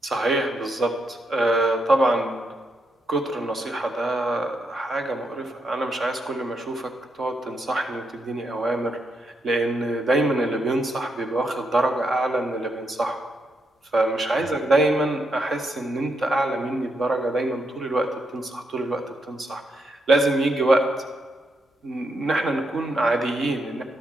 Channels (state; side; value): normal; both; correlation 0.80